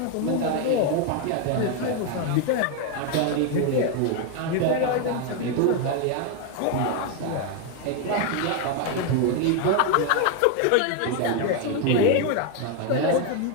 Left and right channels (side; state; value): both; different; correlation 0.01